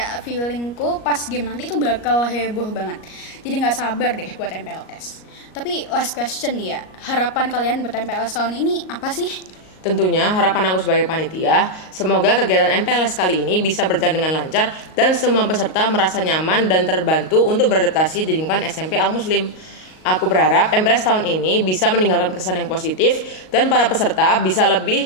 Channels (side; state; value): right; late; 38 ms